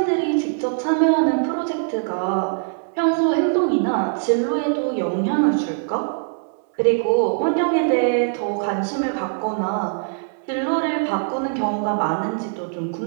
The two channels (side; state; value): left; silent; 64 dB below the other